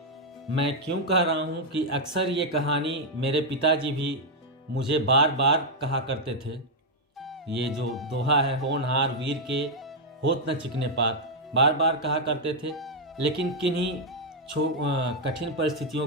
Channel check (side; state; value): both; normal; correlation -0.02